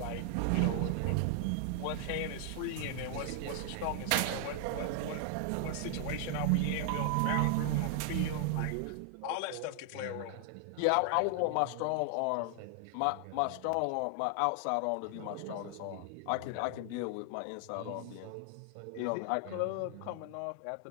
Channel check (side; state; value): both; different; correlation 0.00